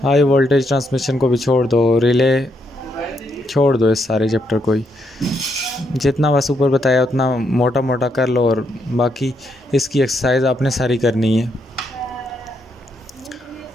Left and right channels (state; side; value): normal; both; correlation 0.78